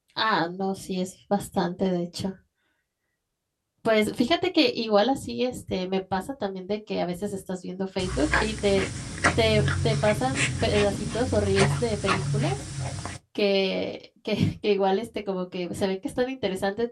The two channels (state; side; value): identical; both; correlation 1.00